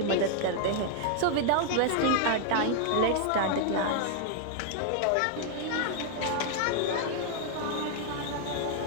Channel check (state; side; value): different; both; correlation 0.00